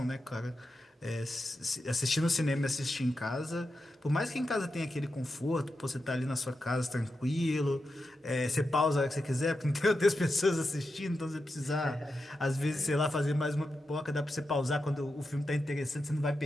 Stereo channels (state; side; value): normal; both; correlation 0.89